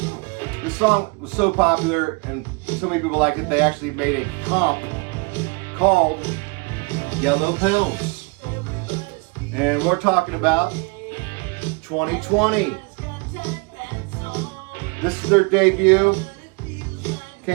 this song was so popular and so many people liked it, they actually made a comp called Yellow Pills. And we're talking about 2020. This is their debut.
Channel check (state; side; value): quieter; left; 29.8 dB